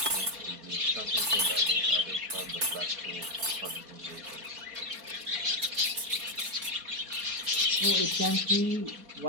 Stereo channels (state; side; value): late; left; 4.5 ms